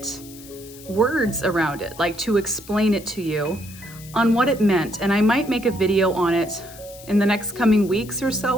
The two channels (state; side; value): noise; left; hiss, 19 dB below the sound